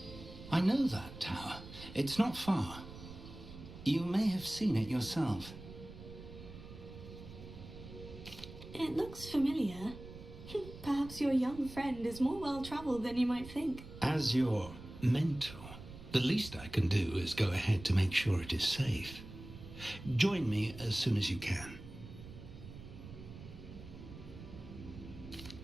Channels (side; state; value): right; noise; rumble, 14 dB below the sound